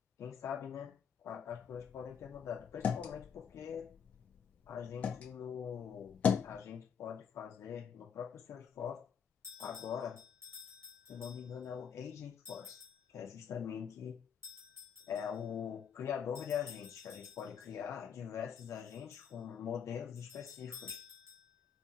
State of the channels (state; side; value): quieter; right; 7.5 dB